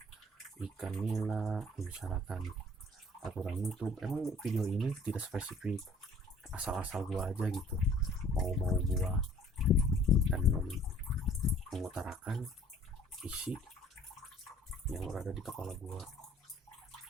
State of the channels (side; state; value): both; normal; correlation 0.55